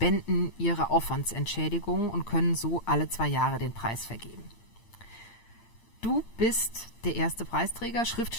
ihre Aufwandsentschädigung und können so alle 2 Jahre den Preis vergeben. Du bist der erste Preisträger,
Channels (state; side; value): late; right; 8.7 ms